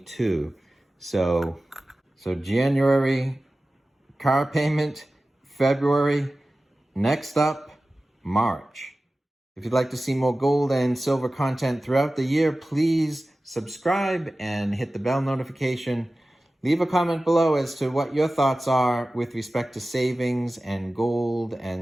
So January car payment, February, next up, March. If you'd like to see more gold and silver content throughout the year, please subscribe and hit the bell notification. Leave a comment below as to what your thoughts are with respect to savings and gold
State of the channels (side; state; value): both; normal; correlation 0.96